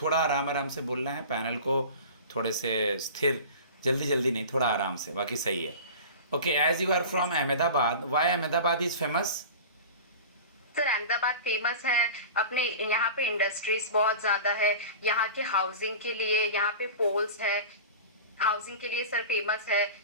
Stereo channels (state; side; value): inverted; both; correlation -0.35